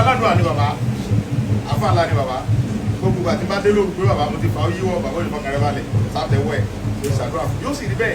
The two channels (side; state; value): both; identical; correlation 1.00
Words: aládùn àní bàbá afáàlà ni bàbá gbogbo àti bá dé lóru pé bàbá mo ti fà ó yíwọ́ bàbá òní fọkàrẹ́ balẹ̀ sátẹ̀wọ́ ẹ̀ ló ṣàdúrà fún yóò sì rí